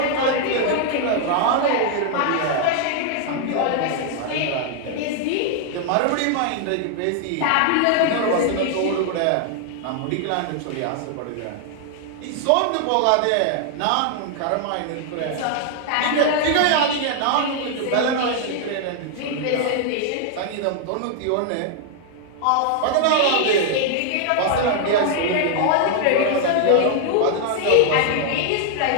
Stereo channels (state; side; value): different; both; correlation 0.00